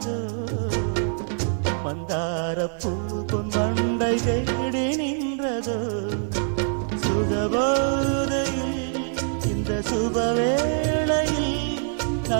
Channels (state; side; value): silent; left; 56 dB below the other